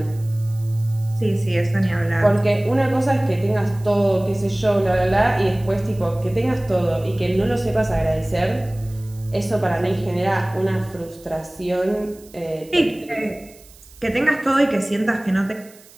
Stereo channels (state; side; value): noise; right; hiss, 24 dB below the sound